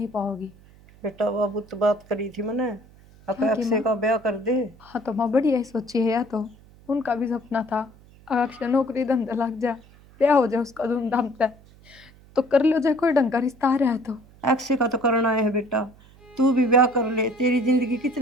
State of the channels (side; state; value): right; noise; hum, 25 dB below the sound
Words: पाओगी। बेटा बाबू तो बात करी थी मैंने, अक्षय का ब्याह कर दे। हाँ तो माँ बढ़िया ही सोची है, या तो उनका भी सपना था अक्षय नौकरी धंधा लग जा, ब्याह हो जाए उसका धूमधाम से, तो कर लो जाए, कोई ढंग का रिश्ता आ रहा है तो। अक्षय का तो करना है बेटा, तू भी ब्याह कर ले, तेरी जिंदगी